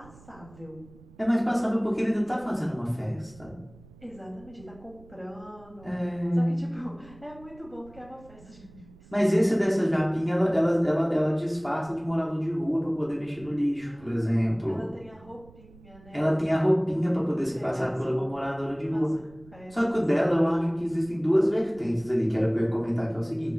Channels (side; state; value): right; noise; rumble, 23 dB below the sound